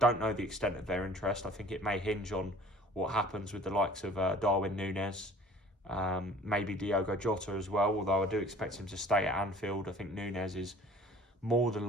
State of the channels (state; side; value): normal; both; correlation 0.50